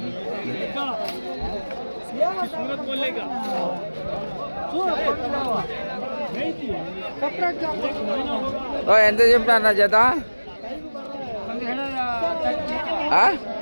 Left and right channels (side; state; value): both; inverted; correlation -1.00